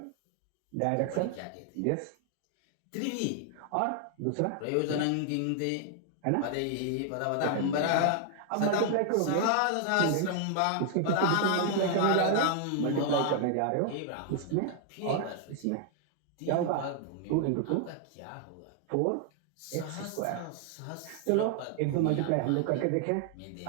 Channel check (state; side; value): different; both; correlation 0.00